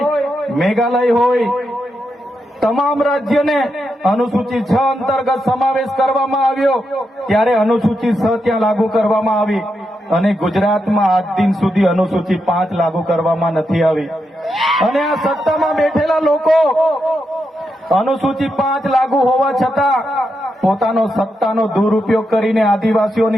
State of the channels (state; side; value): normal; both; correlation 0.84